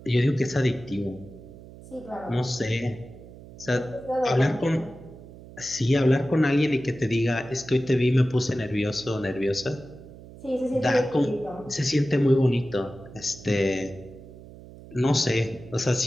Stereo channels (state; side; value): noise; right; hum, 18 dB below the sound